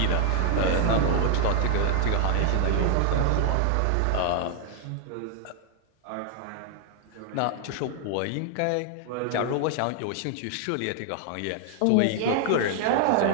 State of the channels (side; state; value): both; different; correlation 0.00